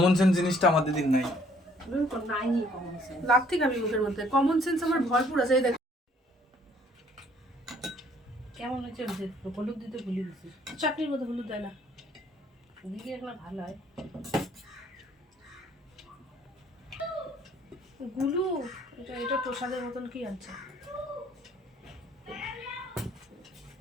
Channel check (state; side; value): normal; both; correlation 0.61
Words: সেন্স জিনিসটা আমার দিদির নাই। নাই কমন সেন্স, লাগতে খাবি মুখের মধ্যে, কমন সেন্স আমার ভরপুর আছে। এই দেখ কেমন হচ্ছে, হলুদ দিতে ভুলে গেছি। চাটনির মধ্যে হলুদ দেয় না, দিলে একটা ভালো হয়। গুলু এটা প্রসাদের মতন কি আছে?